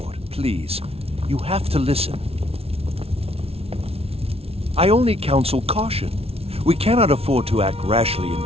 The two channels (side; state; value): left; late; 0.29 ms